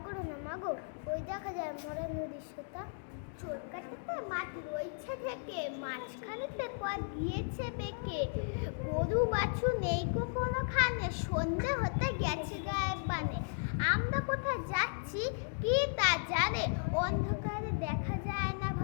করো না মাগো, ওই দেখা যায় মরা নদীর সোতা। চোর কাটাতে মাছ রয়েছে থেকে, মাঝখানেতে পথ গিয়েছে বেঁকে। গরু বাছু নেই কখনো খানে, সন্ধে হতে গেছে গায়ের বানে। আমরা কোথায় যাচ্ছি কি তা জানে, অন্ধকারে দেখা যায় না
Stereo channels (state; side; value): silent; right; digital silence